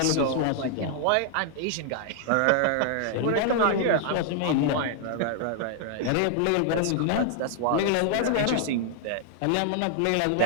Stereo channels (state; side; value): different; both; correlation -0.01